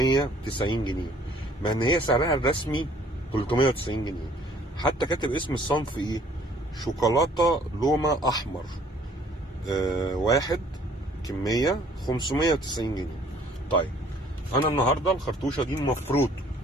جنيه، مع ان هي سعرها الرسمي 390 جنيه. حتى كاتب اسم الصنف ايه، شوكولاته لومه احمر، واحد، كميه 590 جنيه. طيب انا النهارده الخرطوشه دي المفروض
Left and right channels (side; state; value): both; normal; correlation 0.58